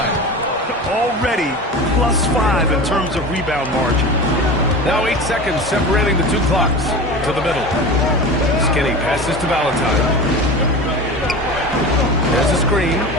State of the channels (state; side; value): normal; both; correlation 0.31